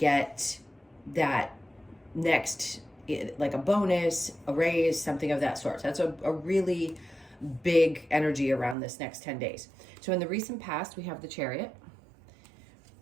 that next, like a bonus, a raise, something of that sort. So that's a really big energy around this next 10 days. So in the recent past, we have the Chariot,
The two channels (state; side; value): drops out; left; at 8.8 s